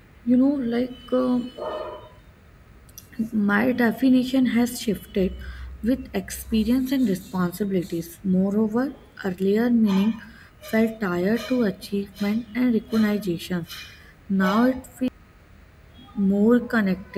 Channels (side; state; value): both; identical; correlation 1.00